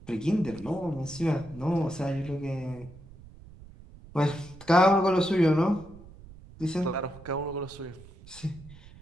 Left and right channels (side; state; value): right; noise; rumble, 19 dB below the sound